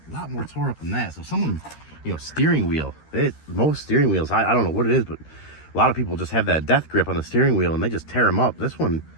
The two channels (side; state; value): right; late; 13 ms